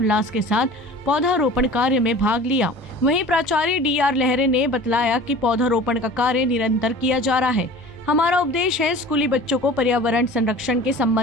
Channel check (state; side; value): normal; both; correlation 0.41